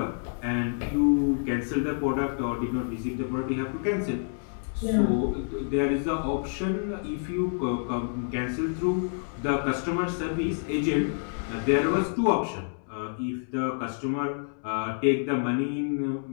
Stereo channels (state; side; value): silent; right; digital silence